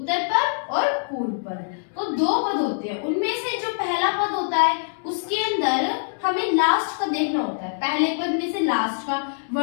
पद और पूर्व पद। तो 2 पद होते हैं, उनमें से जो पहला पद होता है उसके अंदर हमें लास्ट का देखना होता है। पहले पद में से लास्ट का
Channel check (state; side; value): silent; right; digital silence